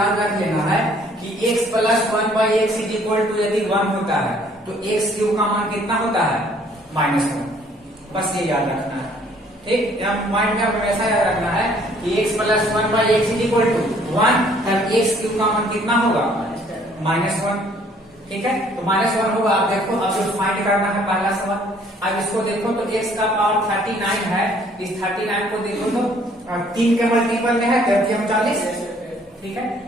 रख लेना है कि x plus 1 by x is equal to यदि 1 होता है तो x क्यूब का मान कितना होता है, -1, बस ये याद रखना है। ठीक, यहाँ माइंड में हमेशा याद रखना है कि x plus 1 by x is equal to 1, तब x क्यूब का मान कितना होगा, -1। ठीक है, तो -1 होगा। आप देखो, अब जो फाइंड करना है पहला सवाल, अब इसको देखो तो x का पावर 39 है, इस 39 को देखो तो 3 के मल्टीपल में है, 40। ठीक है,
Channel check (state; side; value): normal; both; correlation 0.60